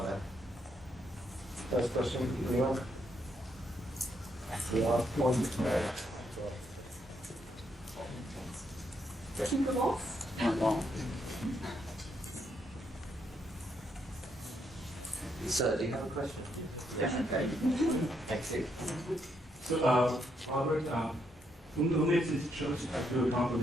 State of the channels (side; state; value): both; normal; correlation 0.77